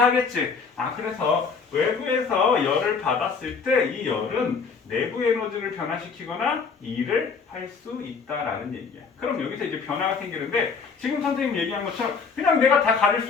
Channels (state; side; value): quieter; right; 5.4 dB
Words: 그래서 외부에서 열을 받았을 때 이 열은 내부 에너지를 변화시키거나 일을 할 수 있다라는 얘기야. 그럼 여기서 이제 변화가 생기는데 지금 선생님 얘기한 것처럼 그냥 내가 다 가릴